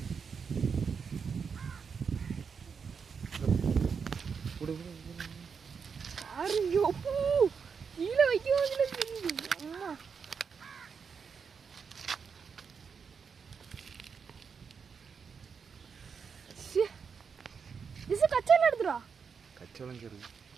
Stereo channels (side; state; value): left; quieter; 6.1 dB